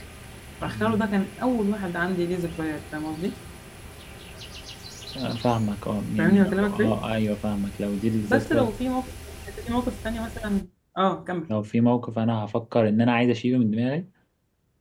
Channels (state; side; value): identical; both; correlation 1.00